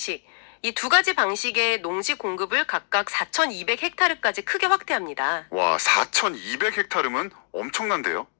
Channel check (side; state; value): right; silent; 59 dB below the other